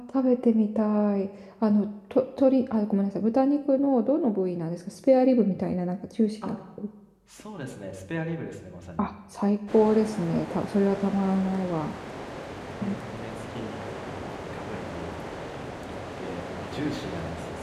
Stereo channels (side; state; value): both; identical; correlation 1.00